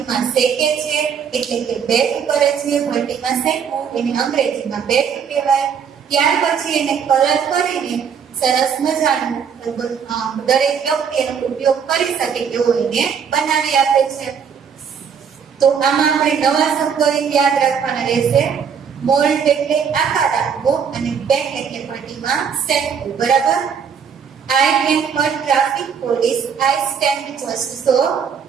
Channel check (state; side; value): quieter; left; 7.0 dB